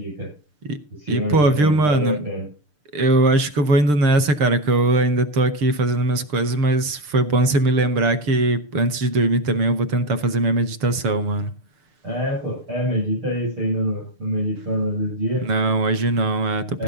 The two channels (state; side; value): late; left; 6.7 ms